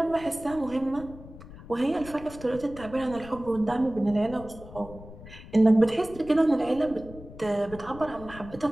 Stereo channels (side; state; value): left; noise; rumble, 16 dB below the sound